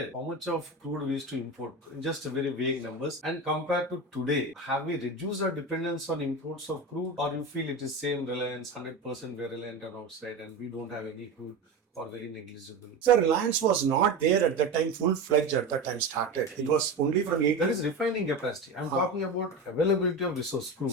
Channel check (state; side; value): quieter; left; 3.1 dB